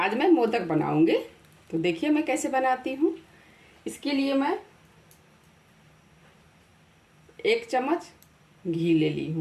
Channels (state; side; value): identical; both; correlation 1.00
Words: मैं मोदक बनाऊँगी। तो देखिए मैं कैसे बनाती हूँ। इसके लिए मैं 1 चम्मच घी ले ली